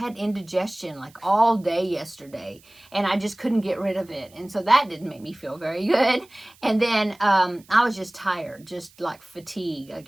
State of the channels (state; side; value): noise; right; hiss, 28 dB below the sound